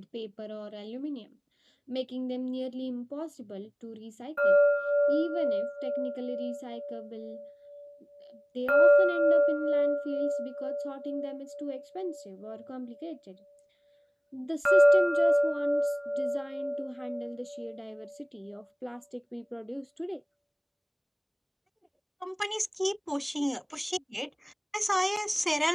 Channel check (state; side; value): identical; both; correlation 1.00